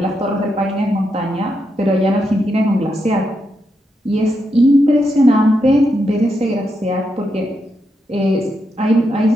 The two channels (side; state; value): both; normal; correlation 0.83